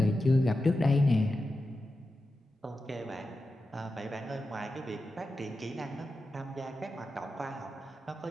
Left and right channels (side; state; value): both; normal; correlation 0.91